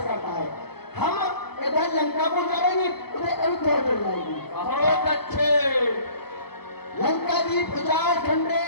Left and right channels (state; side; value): late; right; 0.96 ms